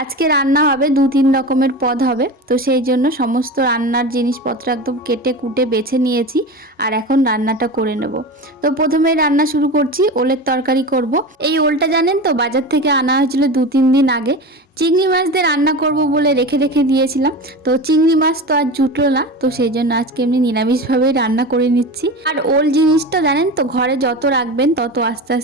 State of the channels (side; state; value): both; normal; correlation 0.28